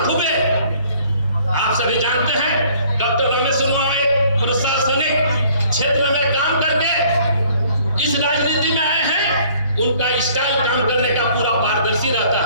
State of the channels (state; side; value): inverted; both; correlation -0.58